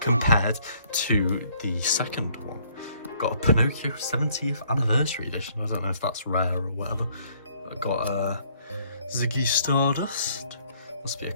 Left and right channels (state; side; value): inverted; both; correlation -0.63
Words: to the second one. Got a Pinocchio 70th anniversary edition. I don't know if that's rare or whatever. I got a Ziggy Stardust. Must be a